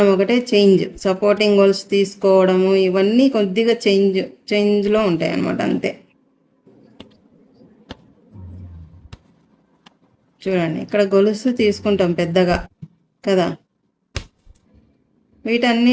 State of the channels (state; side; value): identical; both; correlation 1.00